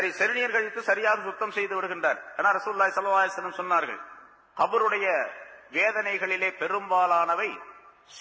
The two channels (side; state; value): both; identical; correlation 1.00